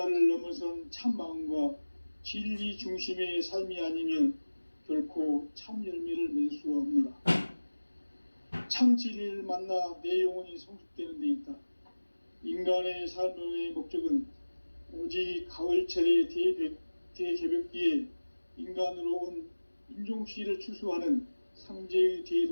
넘어선 참마음과 진리 중심의 삶이 아니면 결코 참 열매를 맺을 수가 없노라. 참 진리를 만나 내 영혼이 성숙되는 데 있다. 인간의 삶의 목적은 오직 가을철의 대개벽기에 인간으로 온 인종시를 추수하는 상제의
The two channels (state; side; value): inverted; both; correlation -1.00